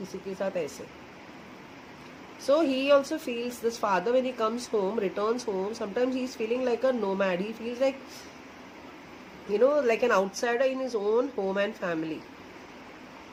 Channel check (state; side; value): identical; both; correlation 1.00